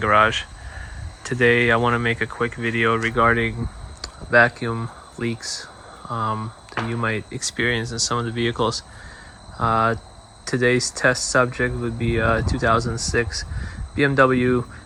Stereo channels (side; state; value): both; identical; correlation 1.00